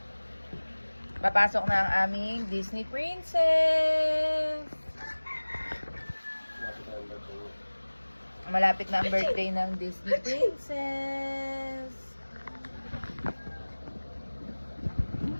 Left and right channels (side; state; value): both; inverted; correlation -1.00